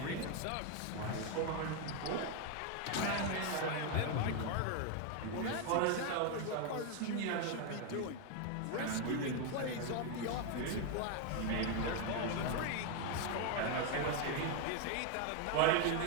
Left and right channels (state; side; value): different; both; correlation 0.01